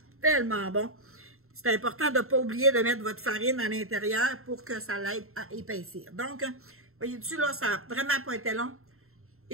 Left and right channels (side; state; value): left; late; 0.62 ms